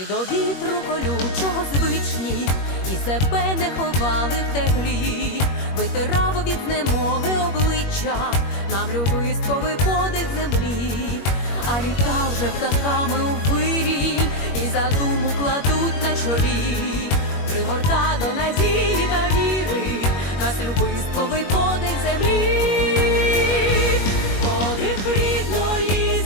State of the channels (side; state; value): right; late; 21 ms